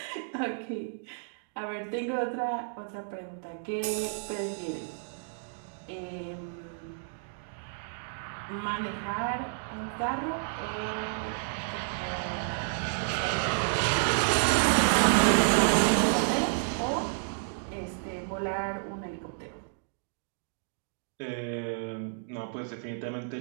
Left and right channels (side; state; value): left; silent; digital silence